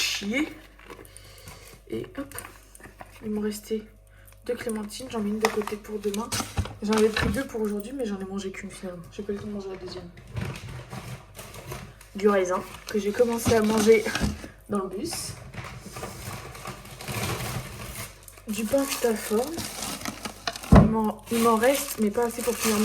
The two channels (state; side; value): identical; both; correlation 1.00